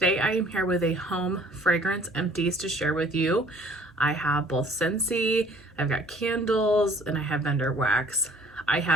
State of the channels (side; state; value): both; normal; correlation 0.55